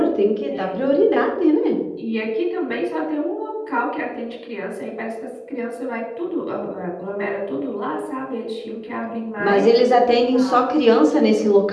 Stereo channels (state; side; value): identical; both; correlation 1.00